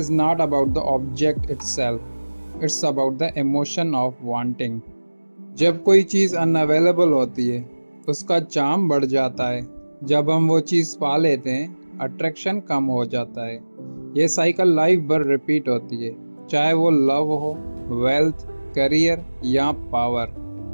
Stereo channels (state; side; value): inverted; both; correlation -1.00